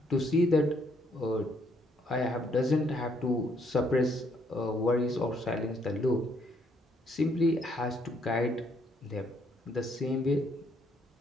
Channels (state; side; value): normal; both; correlation 0.70